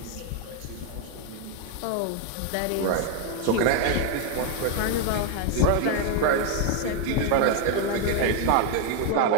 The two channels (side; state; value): both; different; correlation 0.01